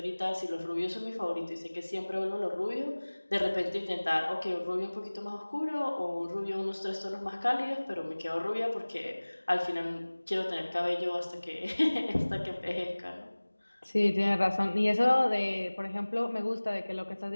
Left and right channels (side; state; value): both; inverted; correlation -1.00